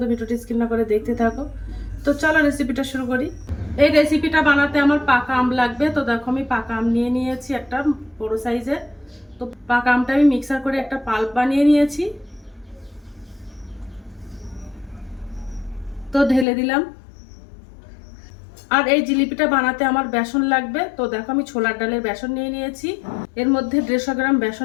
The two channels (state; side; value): drops out; right; at 16.4 s